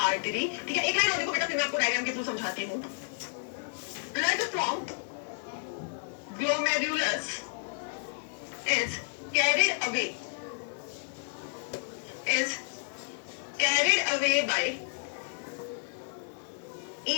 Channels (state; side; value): silent; right; digital silence